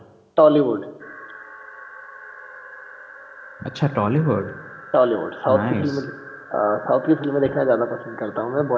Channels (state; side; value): identical; both; correlation 1.00